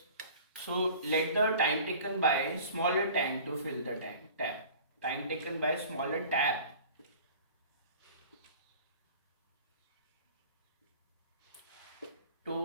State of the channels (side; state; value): both; inverted; correlation -0.45